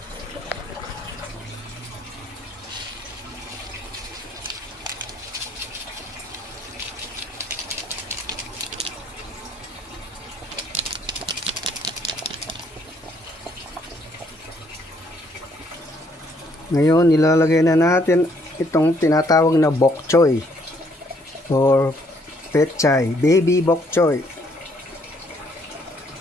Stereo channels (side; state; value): both; normal; correlation 0.67